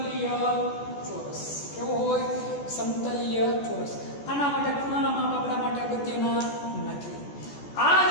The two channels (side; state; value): right; late; 14 ms